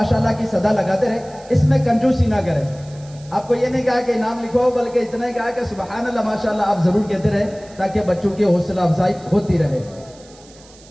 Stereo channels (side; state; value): right; noise; hiss, 25 dB below the sound